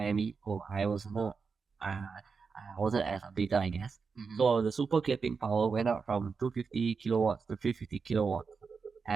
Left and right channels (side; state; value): left; quieter; 5.2 dB